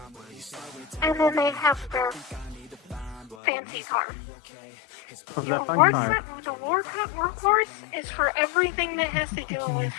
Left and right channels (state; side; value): drops out; right; at 3.4 s